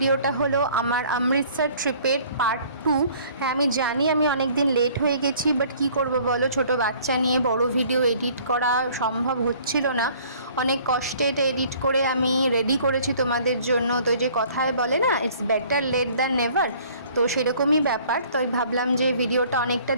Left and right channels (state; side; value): inverted; both; correlation -0.55